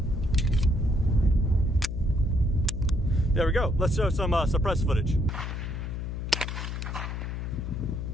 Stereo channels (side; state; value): left; noise; hum, 5 dB below the sound